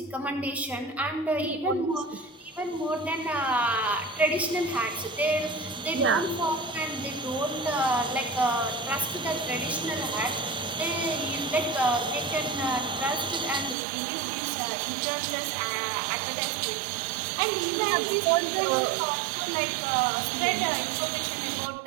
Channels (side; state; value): left; drops out; at 13.8 s